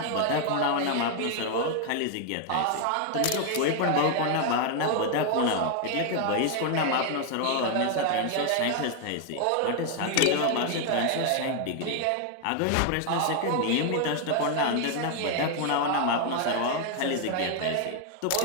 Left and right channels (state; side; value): different; both; correlation 0.00